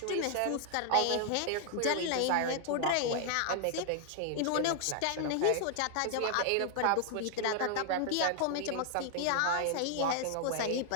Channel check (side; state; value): both; different; correlation 0.00